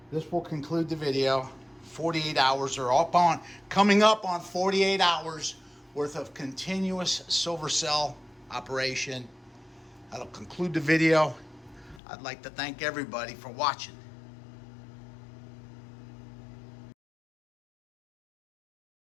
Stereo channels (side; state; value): right; drops out; at 12.0 s